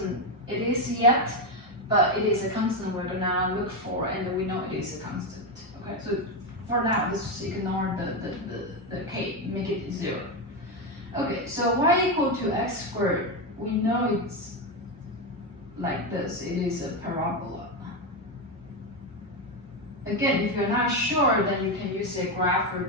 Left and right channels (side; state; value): both; normal; correlation 0.09